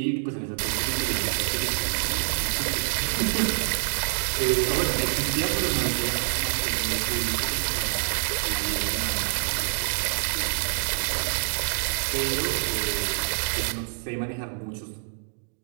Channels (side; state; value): left; silent; digital silence